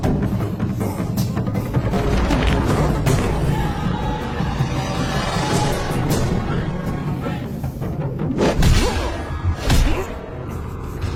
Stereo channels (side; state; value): both; identical; correlation 1.00